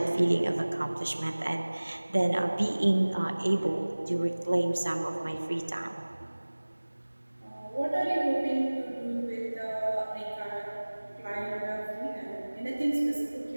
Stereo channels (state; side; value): inverted; both; correlation -1.00